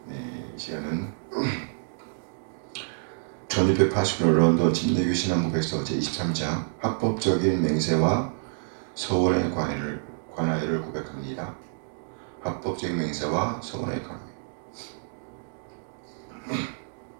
네, 이 시간은 1689년 런던 침례교 신앙고백서 제23장 합법적인 맹세와 서원의 관하여를 고백합니다. 합법적인 맹세와 서원의 관하여.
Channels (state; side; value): silent; left; digital silence